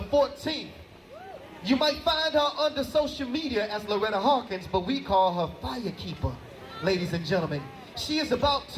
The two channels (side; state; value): both; identical; correlation 1.00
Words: 14th. You might find her under social media as Loretta Hawkins, but we call her Firekeeper, ladies and gentlemen. She is about